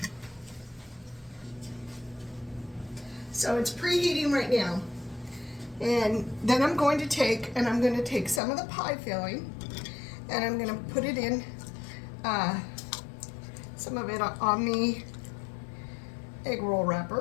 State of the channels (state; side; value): drops out; right; at 8.4 s